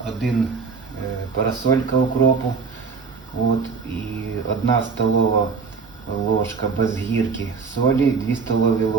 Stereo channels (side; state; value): left; quieter; 5.2 dB